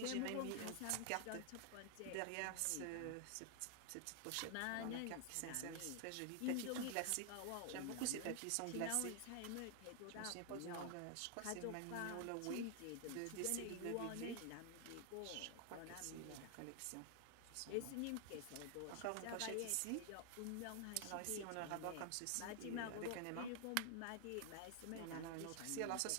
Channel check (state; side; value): different; both; correlation 0.00